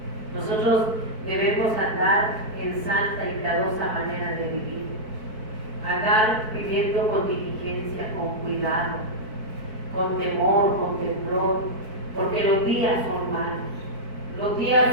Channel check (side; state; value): left; late; 4.6 ms